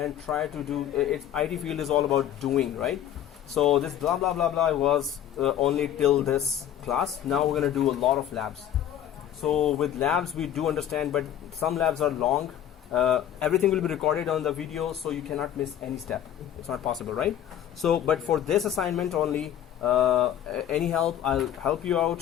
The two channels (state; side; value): quieter; right; 10.7 dB